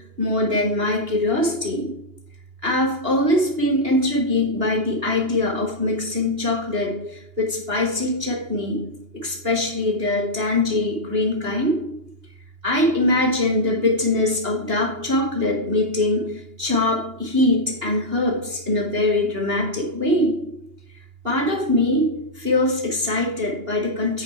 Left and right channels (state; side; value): late; left; 2.8 ms